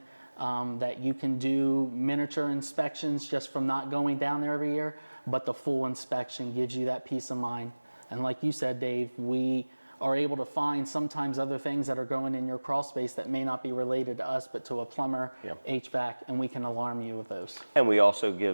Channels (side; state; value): both; inverted; correlation -1.00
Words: that you can do miniature inspections just from not going down there every year, but the full inspection gives you that peace of mind. And like you said, Dave, we are able to find sometimes other things that are going in your crawl space that may not be related to us, but to a plumber, HVAC, and we can alarm you with those. And we also